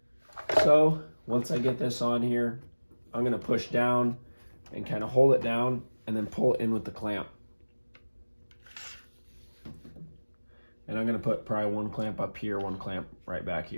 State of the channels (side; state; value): both; inverted; correlation -1.00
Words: So once I get this on here, I'm gonna push down and kind of hold it down and then pull it in with the clamp. And I'm gonna put probably one clamp up here, one clamp right back